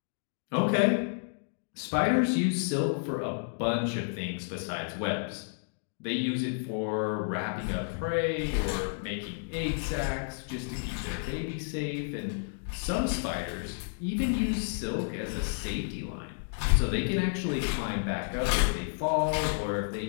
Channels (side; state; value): right; silent; digital silence